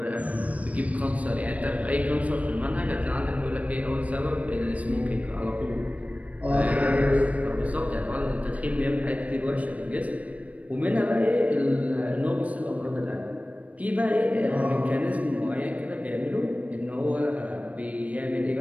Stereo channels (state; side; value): late; left; 0.068 ms